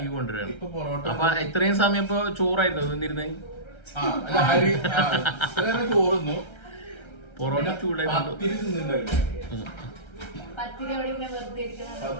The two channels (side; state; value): right; late; 1.3 ms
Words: കൊണ്ടുവരണം. ഇപ്പൊ പൊറോട്ട അപ്പൊ ഇത്രയും സമയം ഇപ്പൊ ചോറായിരുന്നു നിന്നിരുന്നേ. ചോറുന്നു. പൊറോട്ട ചൂടായി പത്തിരി തിന്നിണ്ടായിരുന്നു.